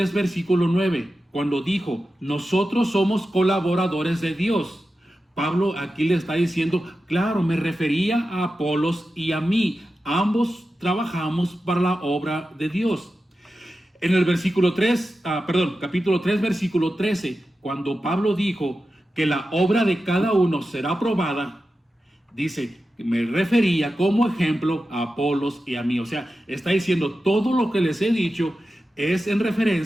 versículo 9, cuando dijo, nosotros somos colaboradores de Dios, Pablo aquí le está diciendo, claro, me refería a Apolos y a mí. Ambos trabajamos para la obra de Dios. En el capítulo 3, versículo 13, cuando Pablo dijo que la obra de cada uno será aprobada, dice, me refería como ejemplo a Apolos y a mí. O sea, está diciendo todo lo que les he dicho es en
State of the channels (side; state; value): both; normal; correlation 0.92